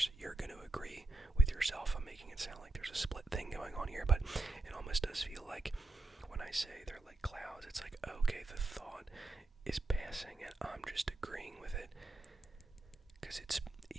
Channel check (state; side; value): quieter; left; 3.2 dB